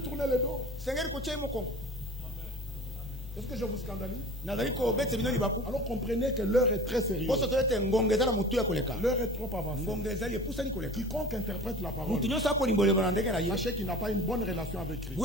tourner le dos. Est-ce que je vous scandalise? Alors comprenez que l'heure est très sérieuse. L'heure est trop avancée. Quiconque interprète la parole, sachez qu'il n'a pas une bonne relation avec Christ. Il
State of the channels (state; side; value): normal; both; correlation 0.40